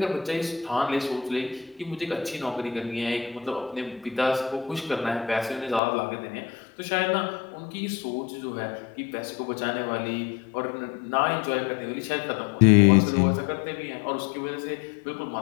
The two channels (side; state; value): right; drops out; at 5.8 s